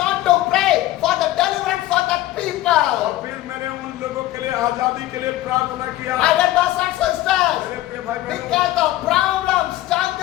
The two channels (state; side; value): quieter; right; 15.7 dB